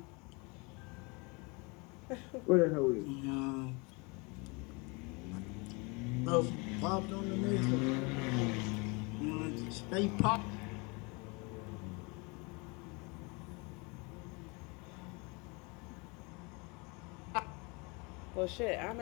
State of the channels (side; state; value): right; quieter; 29.0 dB